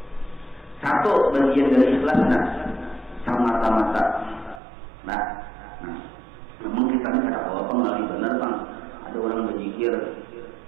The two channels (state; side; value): drops out; left; at 4.6 s